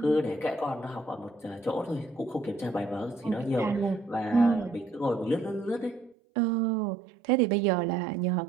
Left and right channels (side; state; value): left; drops out; at 6.2 s